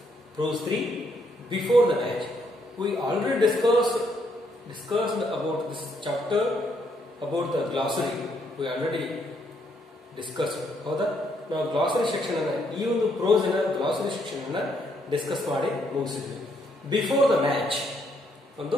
prose 3, before the match. We already discussed about this chapter, about the glossary. We already discussed. ಹೌದಾ? ನಾವು glossary section ಅನ್ನು ಈ ಒಂದು prose ನ glossary section ಅನ್ನು discuss ಮಾಡಿ ಮುಗಿಸಿದ್ವಿ. Before the match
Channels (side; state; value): both; normal; correlation 0.73